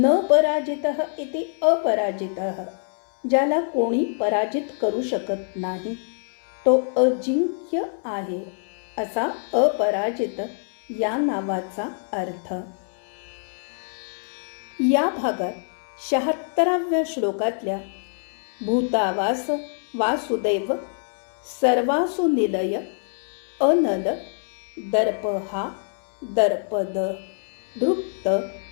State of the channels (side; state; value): right; silent; 60 dB below the other